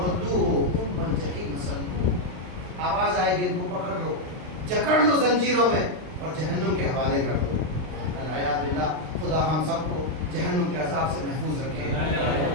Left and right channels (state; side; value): late; left; 39 ms